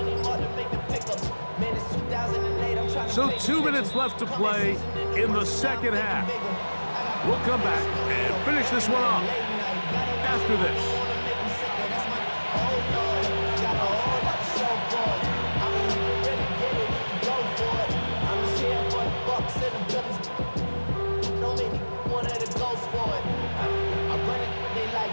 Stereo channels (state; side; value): inverted; both; correlation -1.00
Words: more to make the pickups. Man, it's 2008, I'm trying to So 2 minutes left to play in the second half. We'll come back and finish this one off after this.